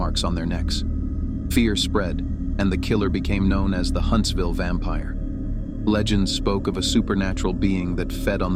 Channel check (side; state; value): both; identical; correlation 1.00